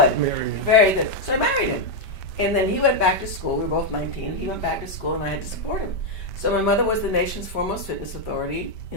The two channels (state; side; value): late; right; 5.1 ms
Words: Very good. So I married him. And then he went back to school. We were both 19. He went back to school, and I had to support him. So my mother was the nation's foremost fitness authority